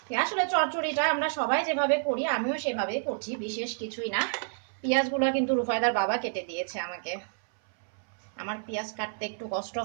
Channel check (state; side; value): silent; left; 58 dB below the other